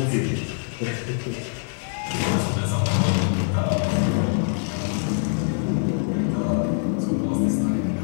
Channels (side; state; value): right; silent; 63 dB below the other